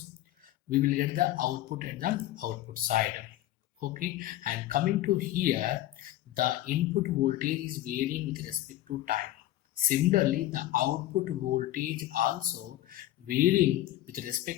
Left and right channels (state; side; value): quieter; right; 14.6 dB